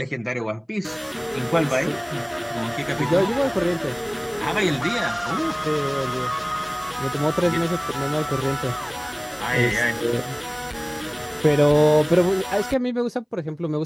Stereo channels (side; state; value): both; identical; correlation 1.00